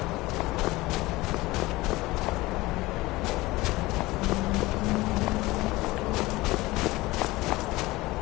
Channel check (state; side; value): quieter; right; 20.0 dB